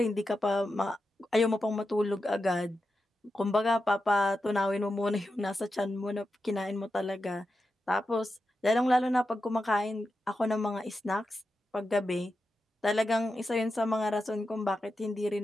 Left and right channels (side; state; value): both; normal; correlation 0.89